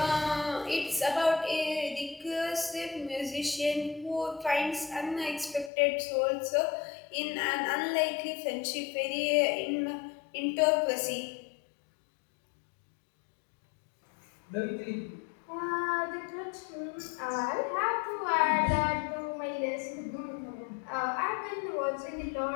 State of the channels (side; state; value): right; drops out; at 5.7 s